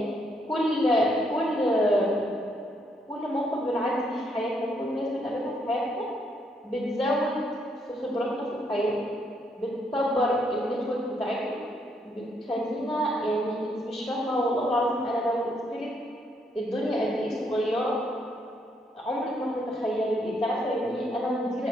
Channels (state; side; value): normal; both; correlation 0.73